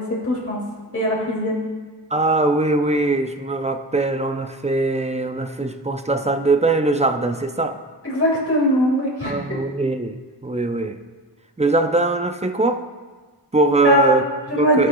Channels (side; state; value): both; normal; correlation 0.28